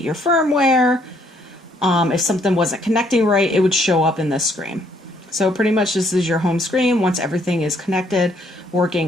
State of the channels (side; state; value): both; normal; correlation 0.67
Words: your firmware, if something wasn't connecting right, it would show up in this screen. So pretty much this is your home screen once everything is connected,